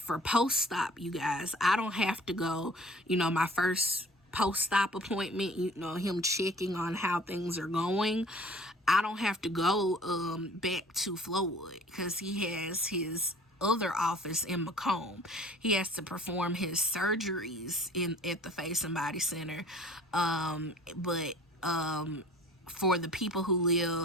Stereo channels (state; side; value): normal; both; correlation 0.49